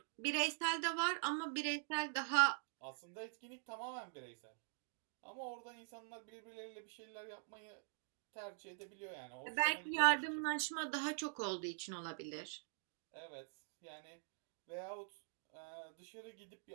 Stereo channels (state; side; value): silent; left; digital silence